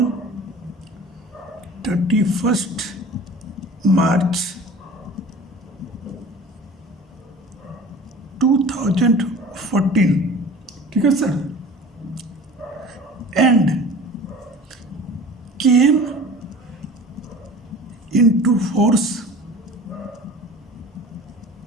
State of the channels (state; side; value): normal; both; correlation 0.42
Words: 31 मार्च 2014, ठीक है sir. And came into force